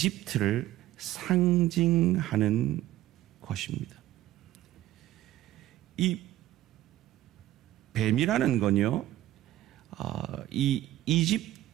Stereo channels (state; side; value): quieter; left; 14.2 dB